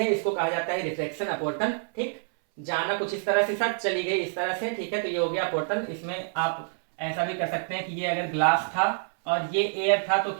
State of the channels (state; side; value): silent; left; 60 dB below the other